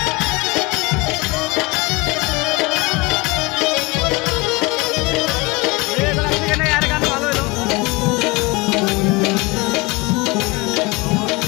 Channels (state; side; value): quieter; right; 24.4 dB